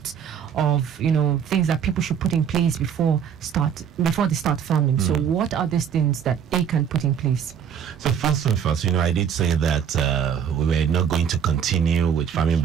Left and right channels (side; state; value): left; quieter; 8.0 dB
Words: of, things that people should put in place before they start farming. So what are these things that they can put in place? So first and first, I did say that we were not going to continue with farming